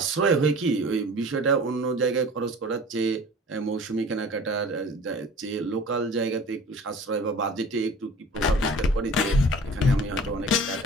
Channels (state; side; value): normal; both; correlation 0.43